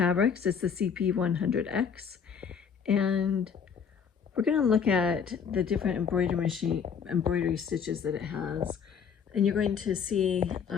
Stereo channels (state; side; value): quieter; right; 6.9 dB